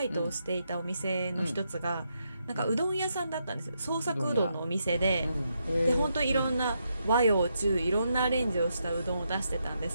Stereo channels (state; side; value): inverted; both; correlation -0.81